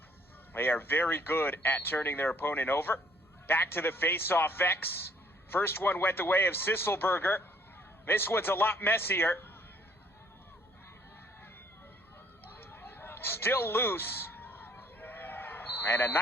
They are very good at turning their opponent over. Back to the face-off X. First one went the way of Sisselberger. This one's a lot messier. Still loose. And a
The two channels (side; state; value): both; normal; correlation 0.62